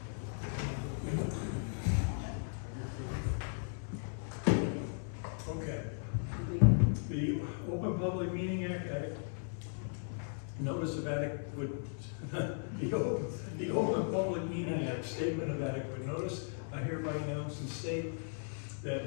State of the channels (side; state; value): right; silent; 53 dB below the other